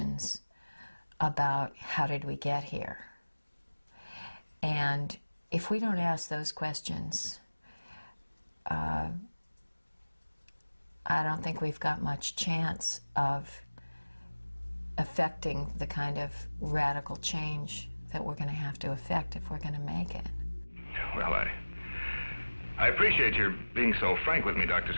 about how did we get here? And if we don't ask those questions, I don't think we've got much chance of affecting the kind of radical change that we're going to have to affect if we're going to make it. Well, I appreciate your being so frank with me, Dr.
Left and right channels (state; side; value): inverted; both; correlation -1.00